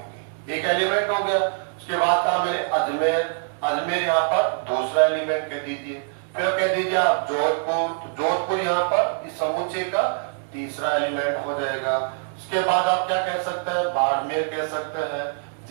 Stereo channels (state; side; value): silent; left; digital silence